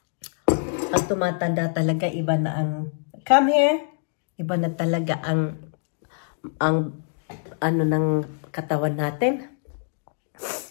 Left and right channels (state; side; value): silent; right; digital silence